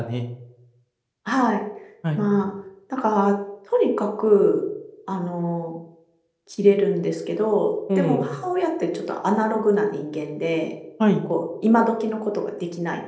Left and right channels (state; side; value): identical; both; correlation 1.00